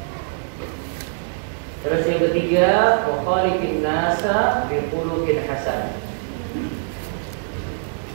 Terus yang ketiga, wa khaliqin nasa bi khuluqin hasan.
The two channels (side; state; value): left; silent; digital silence